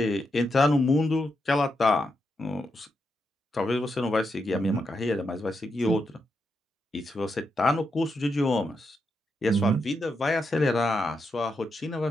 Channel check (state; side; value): normal; both; correlation 0.84